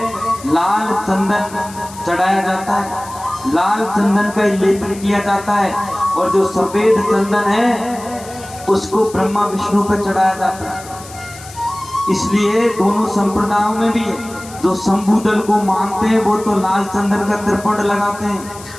लाल चंदन चढ़ाया जाता है, लाल चंदन का लेपन किया जाता है, और जो सफेद चंदन है उसको ब्रह्मा विष्णु पर चढ़ाया जाता है। इसलिए दोनों संप्रदायों में भी है, जो शंभू दल को मानते हैं वो तो लाल चंदन का त्रिपुंड लगाते हैं,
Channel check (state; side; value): noise; left; hiss, 17 dB below the sound